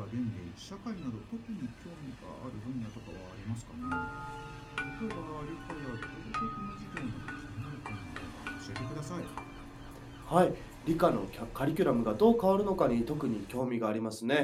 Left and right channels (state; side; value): identical; both; correlation 1.00